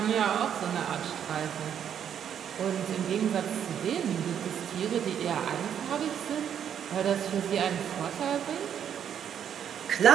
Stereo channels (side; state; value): left; quieter; 8.8 dB